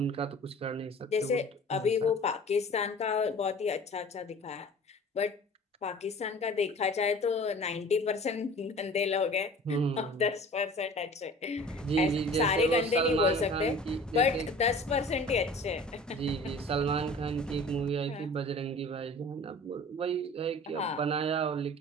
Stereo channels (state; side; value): normal; both; correlation 0.44